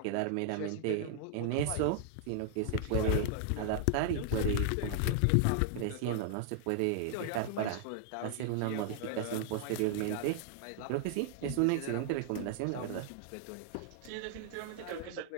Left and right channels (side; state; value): both; different; correlation 0.00